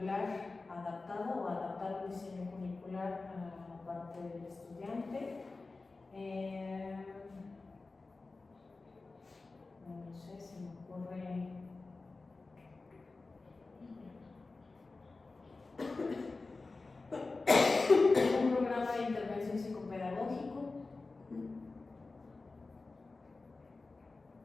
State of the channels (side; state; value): right; quieter; 3.7 dB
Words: adaptado o adaptar un diseño curricular a la parte del estudiante. No sé, se me ocurre. Un programa de intervención psicopedagógico.